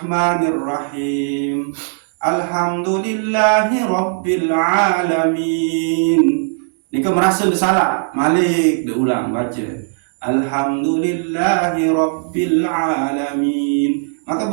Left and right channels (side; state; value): left; silent; digital silence